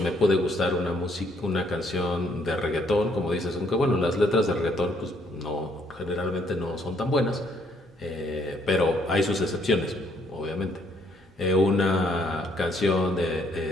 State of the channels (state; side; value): normal; both; correlation 0.68